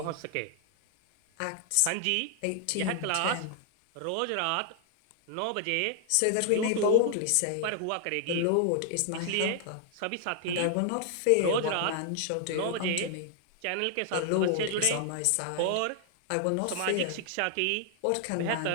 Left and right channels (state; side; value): different; both; correlation 0.00